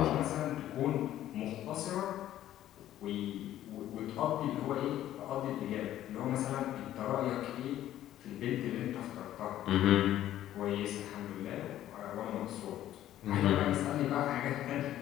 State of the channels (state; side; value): quieter; right; 12.7 dB